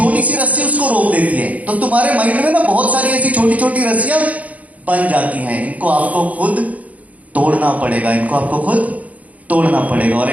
सी रस्सी उसको रोक देती है। तो तुम्हारे माइंड में ना बहुत सारी ऐसी छोटी छोटी रस्सियां बन जाती हैं, इनको आपको खुद तोड़ना पड़ेगा, इनको आपको खुद तोड़ना पड़ेगा। और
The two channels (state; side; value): late; left; 0.070 ms